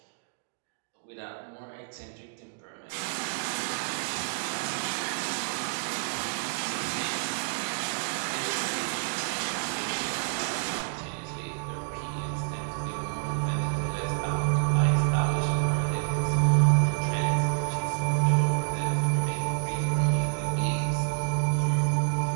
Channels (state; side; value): silent; left; digital silence